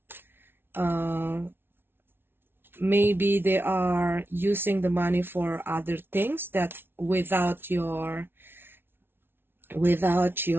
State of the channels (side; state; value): left; late; 0.11 ms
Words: Maybe they are using the money for other things that without your